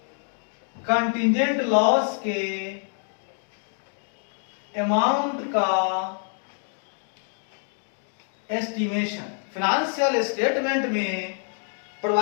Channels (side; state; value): right; silent; 56 dB below the other